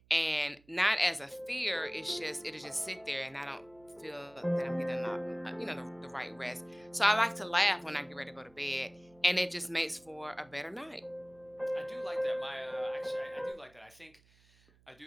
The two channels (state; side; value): noise; right; hum, 30 dB below the sound